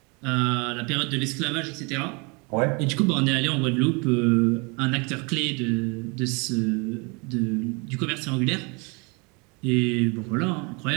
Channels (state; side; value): quieter; left; 30.5 dB